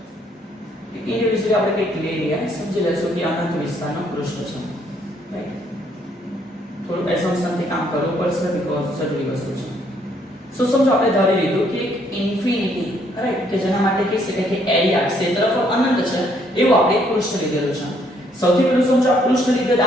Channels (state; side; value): normal; both; correlation 0.68